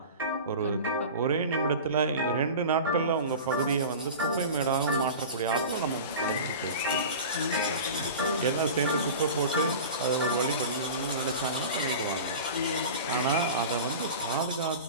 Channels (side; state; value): both; inverted; correlation -0.33